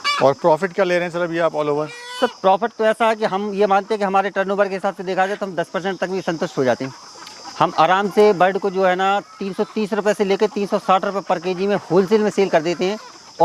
और प्रॉफिट क्या ले रहे हैं सर अभी आप ऑल ओवर? सर प्रॉफिट तो ऐसा है कि हम ये मानते हैं कि हमारे टर्नओवर के हिसाब से देखा जाए तो हम 10% तक भी संतुष्ट हो जाते हैं। हम आराम से बर्ड को जो है ना 330 रुपये से लेकर 360 रुपये पर केजी में होलसेल में सेल कर देते हैं।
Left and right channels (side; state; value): both; identical; correlation 1.00